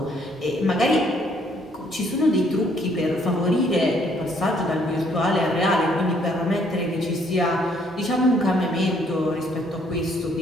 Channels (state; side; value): normal; both; correlation 0.66